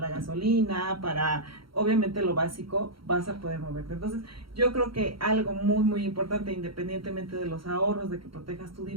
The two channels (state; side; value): late; left; 0.74 ms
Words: gasolina, para obviamente lo básico, vas a poder moverte. Entonces, yo creo que algo muy, muy importante, independientemente de los ahorros, de que protejas tu